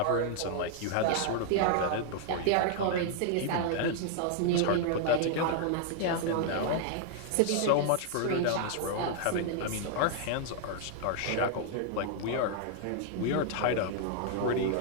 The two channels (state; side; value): different; both; correlation -0.01